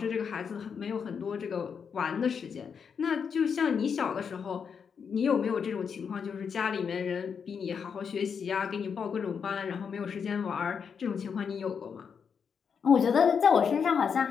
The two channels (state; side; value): quieter; right; 6.6 dB